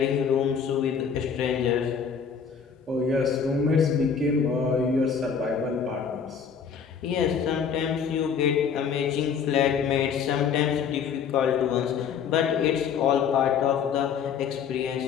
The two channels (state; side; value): quieter; right; 6.8 dB